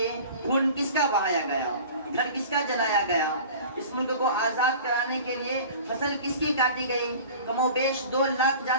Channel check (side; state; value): both; inverted; correlation -0.41